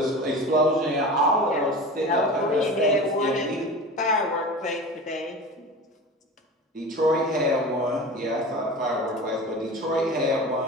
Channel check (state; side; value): normal; both; correlation 0.33